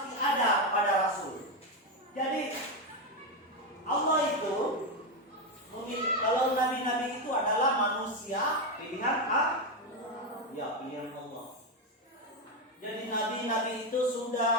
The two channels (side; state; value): both; normal; correlation 0.08